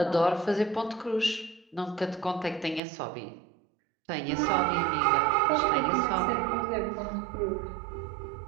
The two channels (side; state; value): left; drops out; at 2.8 s